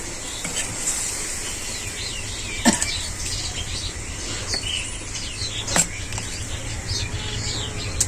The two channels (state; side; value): identical; both; correlation 1.00